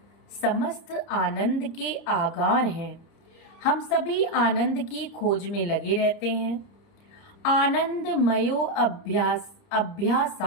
समस्त आनंद के आगार हैं। हम सभी आनंद की खोज में लगे रहते हैं। आनंदमयो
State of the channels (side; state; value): right; late; 30 ms